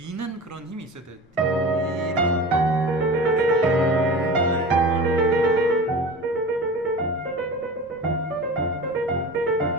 그런 힘이 있어야 돼.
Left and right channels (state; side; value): normal; both; correlation 0.34